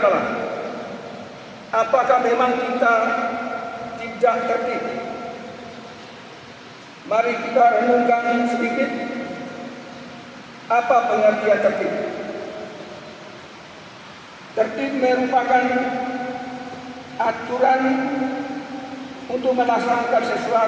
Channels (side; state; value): both; identical; correlation 1.00